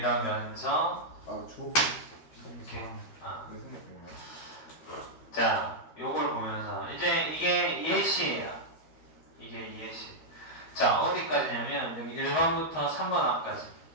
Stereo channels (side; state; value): right; late; 13 ms